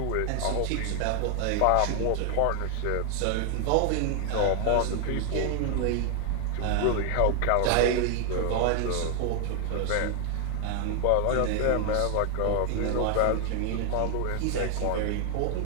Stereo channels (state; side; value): different; both; correlation 0.00